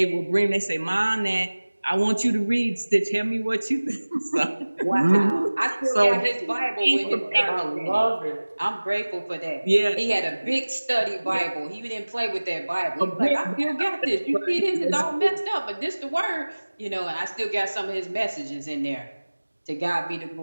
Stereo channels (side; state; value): both; inverted; correlation -1.00